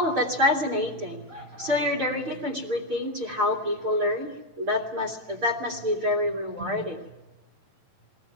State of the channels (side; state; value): left; late; 8.8 ms